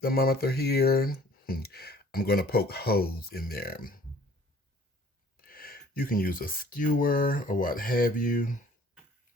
thermometer here. I'm going to poke holes in there. You can use a skewer or what have you,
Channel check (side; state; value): both; normal; correlation 0.53